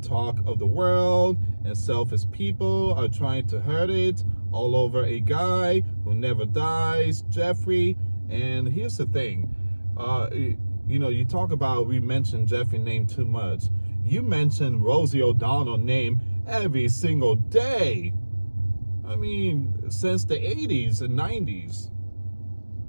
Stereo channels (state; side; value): inverted; both; correlation -1.00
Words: of the world, and selfish people are trying to hurt it, all over a guy who never dies, Jeffrey. And here's the thing, you talk about, we mentioned Jeffrey name too much. You mention Rosie O'Donnell name every single day. I mean, since the 80s and 90s.